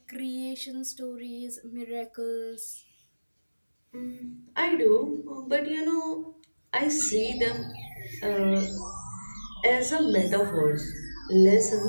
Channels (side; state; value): both; inverted; correlation -1.00